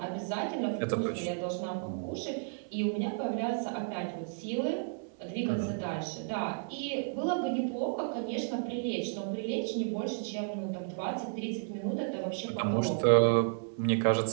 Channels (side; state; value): left; silent; 56 dB below the other